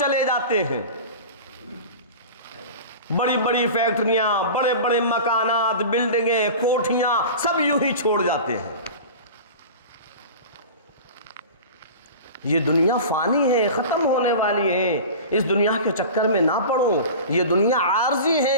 جاتے ہیں، بڑی بڑی فیکٹریاں، بڑے بڑے مکانات، بلڈنگیں، کوٹھیاں، سب یوں ہی چھوڑ جاتے ہیں۔ یہ دنیا فانی ہے، ختم ہونے والی ہے، اس دنیا کے چکر میں نہ پڑو۔ یہ دنیا عارضی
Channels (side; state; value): both; inverted; correlation -0.34